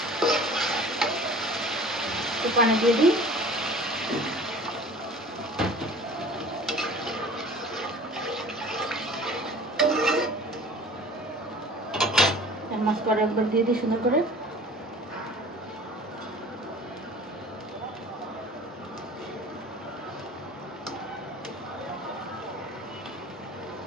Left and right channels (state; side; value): normal; both; correlation 0.44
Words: পানি দিয়ে দিই। মাছটা একবার দিয়ে দিই সুন্দর করে।